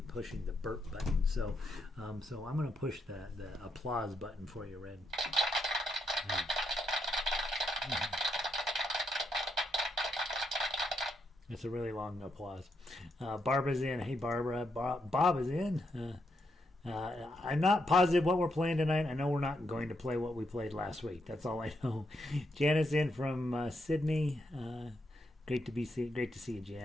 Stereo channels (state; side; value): normal; both; correlation 0.79